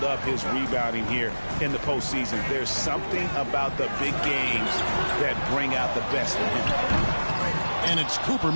up his rebounding here in the postseason. There's something about the big games that bring out the best in him. And it's Cooper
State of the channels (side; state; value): both; inverted; correlation -1.00